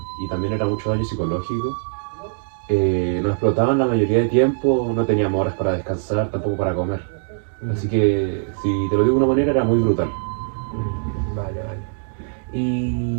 y también era mucho daño psicológico. Nos explotaban la mayoría de tiempo, no teníamos horas para descansar, tampoco para comer. Así que, si te lo digo de una manera, era muy brutal. Vale.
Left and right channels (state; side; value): silent; left; digital silence